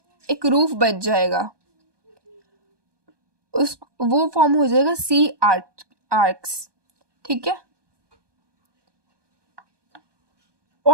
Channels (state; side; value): late; left; 1.2 ms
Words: एक रूफ बच जाएगा उस वो फॉर्म हो जाएगा सी आर्क्स. ठीक है.